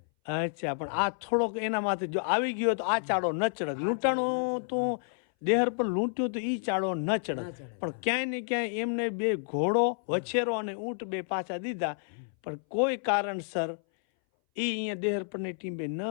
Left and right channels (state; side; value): silent; right; 58 dB below the other